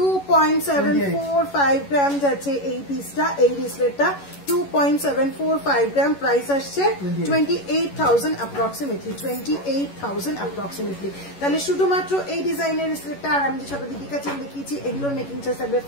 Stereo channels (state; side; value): late; right; 11 ms